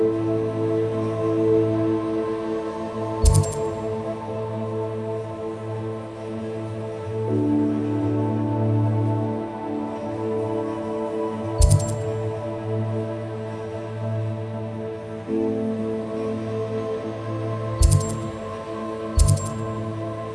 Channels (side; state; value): both; identical; correlation 1.00